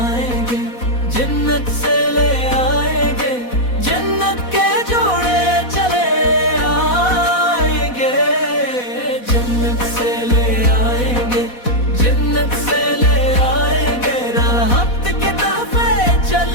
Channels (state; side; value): late; right; 4.1 ms